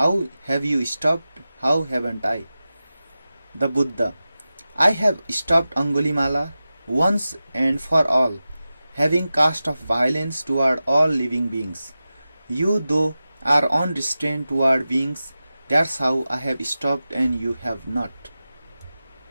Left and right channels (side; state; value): both; inverted; correlation -0.94